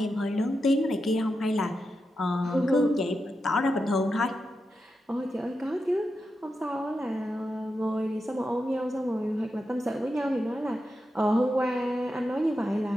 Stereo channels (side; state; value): both; normal; correlation 0.88